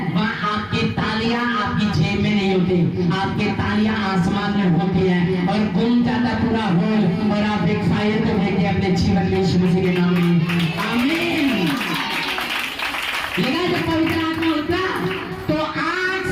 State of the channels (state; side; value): identical; both; correlation 1.00